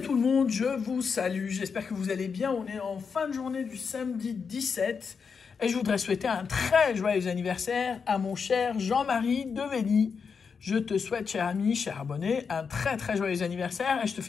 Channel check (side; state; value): right; quieter; 5.8 dB